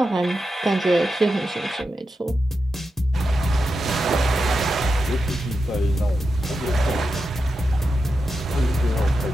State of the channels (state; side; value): normal; both; correlation 0.89